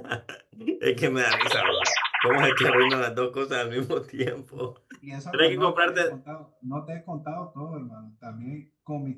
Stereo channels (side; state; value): both; identical; correlation 1.00